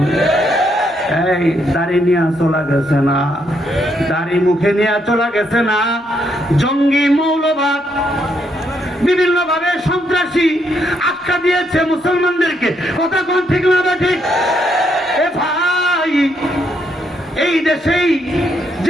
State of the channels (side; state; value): both; normal; correlation 0.75